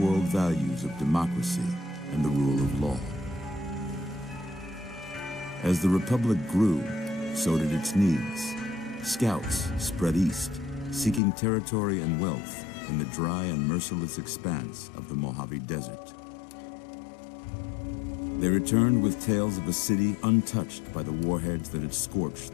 values of democracy and the rule of law. As the Republic grew, so did its needs. Scouts spread east, seeking territory and wealth in the dry and merciless expanse of the Mojave Desert. They returned with tales of a city untouched by the warheads that had scorched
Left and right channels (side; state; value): right; drops out; at 11.2 s